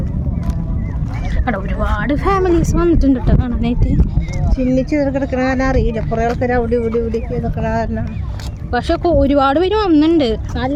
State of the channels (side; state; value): both; identical; correlation 1.00